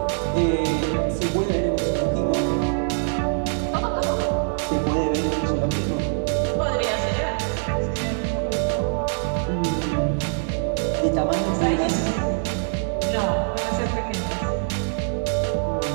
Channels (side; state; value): left; silent; digital silence